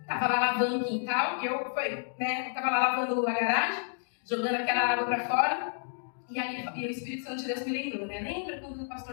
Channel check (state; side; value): silent; right; digital silence